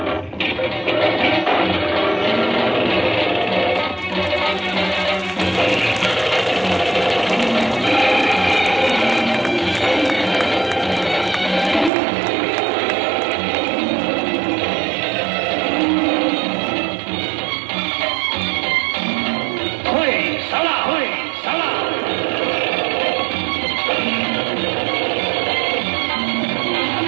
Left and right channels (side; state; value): left; drops out; at 11.9 s